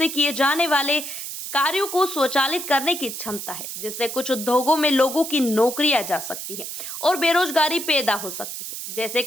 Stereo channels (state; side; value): noise; right; hiss, 7 dB below the sound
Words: किए जाने वाले कार्यों को स्वचालित करने की क्षमता है, जिससे कुछ उद्योगों में लोगों की नौकरियां जा सकती है और बेरोजगारी पैदा हो सकती है। जैसे